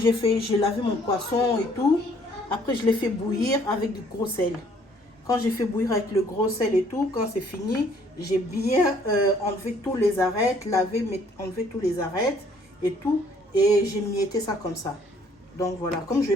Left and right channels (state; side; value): normal; both; correlation 0.61